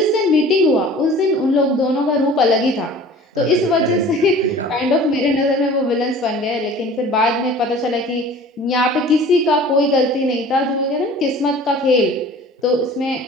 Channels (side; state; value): both; normal; correlation 0.45